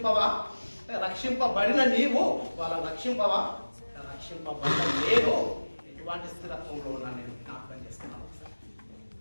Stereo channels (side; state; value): both; inverted; correlation -1.00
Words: రక్షింపబడిన నీవు వాళ్ళని రక్షింపవా? రక్షింపబడిన నేను ఎటువంటి స్థిరత్వంలో ఉన్నాను నేను జ్ఞాపకం చేస్తున్నాను.